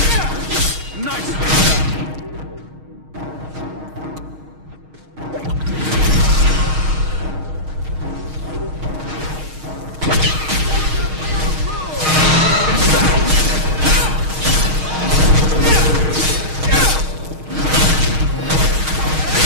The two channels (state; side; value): late; left; 6.4 ms